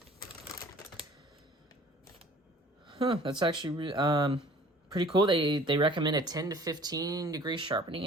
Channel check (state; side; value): normal; both; correlation 0.49